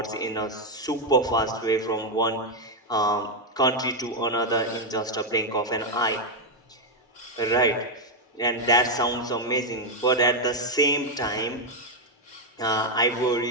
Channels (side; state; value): both; normal; correlation 0.02